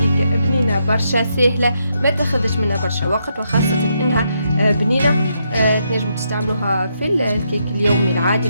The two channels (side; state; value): both; inverted; correlation -0.79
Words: بنينه برشا سهله، ما تاخذش منها برشا وقت، وخاصه انها بنينه. تنجموا تستعملوها في الكيك اليومي العادي،